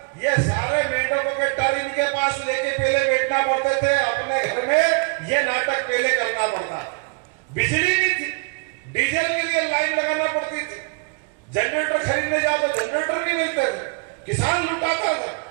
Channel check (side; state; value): left; quieter; 33.9 dB